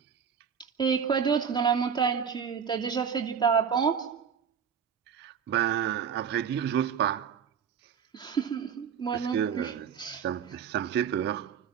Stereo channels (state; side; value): quieter; left; 7.3 dB